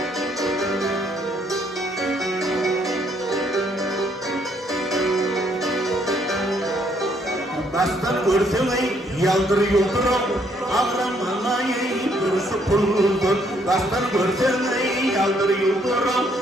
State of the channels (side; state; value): both; normal; correlation 0.69